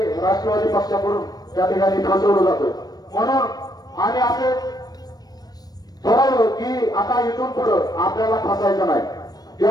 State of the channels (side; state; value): right; late; 0.19 ms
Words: राष्ट्रवादी पक्षाकडून या ठिकाणी फसवलं जातं. म्हणून आम्ही असे ठरवलं की आता इथून पुढं आपल्याला फसायचं नाही.